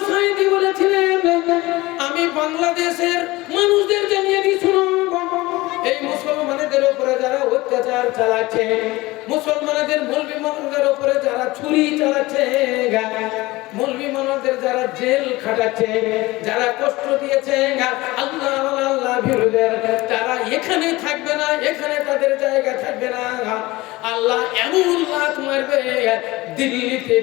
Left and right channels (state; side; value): quieter; right; 20.2 dB